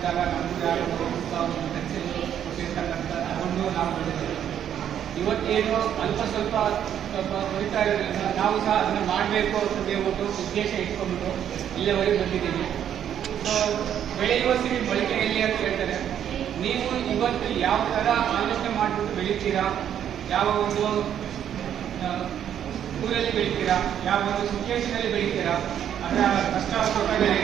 ನಮಗೂ ಯಾರು ಒಂದು ಪೆನ್ಸಿಲ್ ಕೊಟ್ಟಿರ್ತಕ್ಕಂಥ ಅದನ್ನು ನಾವು ಓದಿದ್ದೇವೆ. ಇವತ್ತೇನು ಸ್ವಲ್ಪ ಹೊರಿತಾ ಇರೋದ್ರಿಂದ ನಾವು ಸಹ ಅದನ್ನು ಮಾಡಬೇಕು ಅಂತ ಹೇಳ್ಬಿಟ್ಟು ಉದ್ದೇಶ ಇಟ್ಕೊಂಡ್ಬಿಟ್ಟು ಇಲ್ಲಿವರೆಗೆ ಬಂದಿದ್ದೀವಿ. ಸೊ ಬೆಳೆಯುವಷ್ಟಿಗೆ ಮೊಳಕೆಯಲ್ಲಿ ಅಂತ ಹೇಳ್ತಾರೆ. ನೀವು ಇವತ್ತು ಯಾವ ಥರ ಆಲೋಚನೆ ಮಾಡಿಬಿಟ್ಟು ಬೆಳಿತೀರಾ, ಯಾವ ಒಂದು ಊರಲ್ಲಿ ಬೆಳಿತೀರಾ, ಯಾವ ಒಂದು ಸಿಚುವೇಶನಲ್ಲಿ ಬೆಳಿತೀರಾ, ಅದರ ಕಷ್ಟ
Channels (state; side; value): quieter; left; 9.7 dB